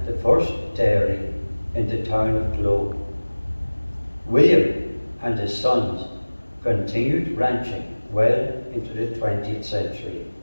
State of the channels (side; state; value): both; inverted; correlation -1.00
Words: the first dairy in the town of Globe. William and his sons continued ranching well into the 20th century.